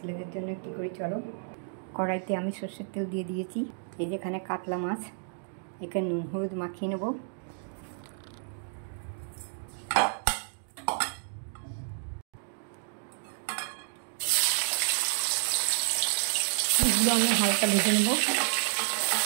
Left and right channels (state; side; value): silent; left; digital silence